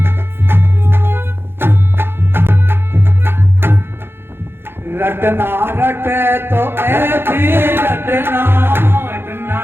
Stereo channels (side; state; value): left; late; 0.11 ms